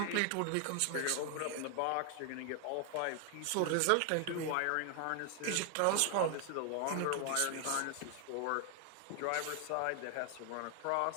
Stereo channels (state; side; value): different; both; correlation 0.00